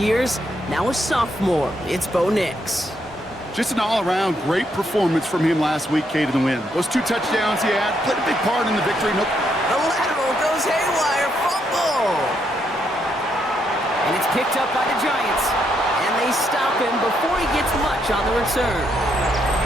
Now a sophomore. It's Bo Nix. Just an all-around great performance from him last week, Kate, in the win. Those 2 touchdowns he had played a big part in the victory. The lateral goes haywire. Fumble. And it's picked up by the Giants. They stop him before he gets much on the return.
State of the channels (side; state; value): both; normal; correlation 0.76